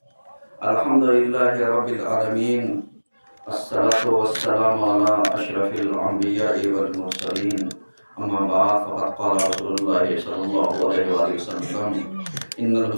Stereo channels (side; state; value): both; inverted; correlation -1.00